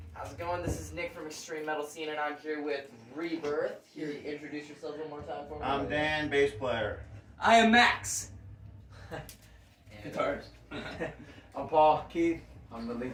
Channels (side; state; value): both; identical; correlation 1.00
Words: How's it going? This is Nick from Extreme Metal Scene, and I'm here with Re-Birth. Here, introduce yourself one more time for me. I'm Dan, bass player. I am Max. Guitars. I'm Paul Keith. I'm the